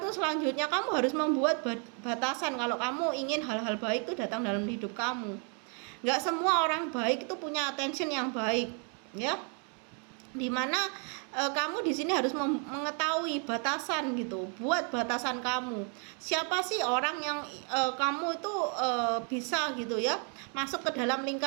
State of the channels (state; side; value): quieter; left; 39.5 dB